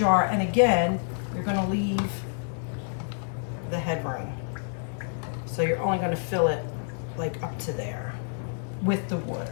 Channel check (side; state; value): right; silent; 59 dB below the other